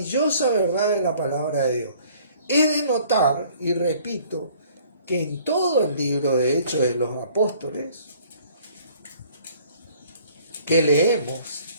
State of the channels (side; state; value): both; inverted; correlation -0.56